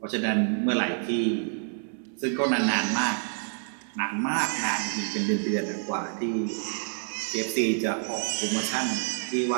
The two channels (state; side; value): silent; left; 59 dB below the other